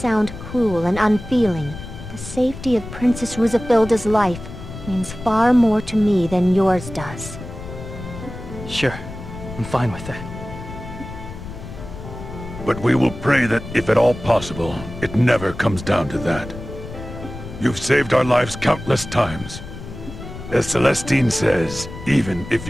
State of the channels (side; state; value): left; noise; rumble, 12 dB below the sound